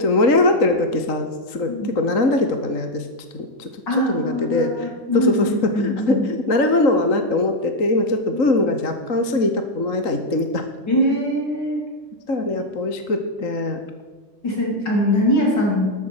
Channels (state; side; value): late; right; 3.8 ms